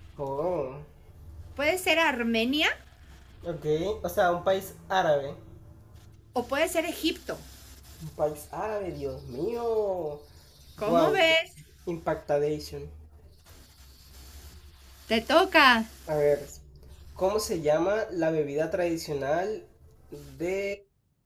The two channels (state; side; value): identical; both; correlation 1.00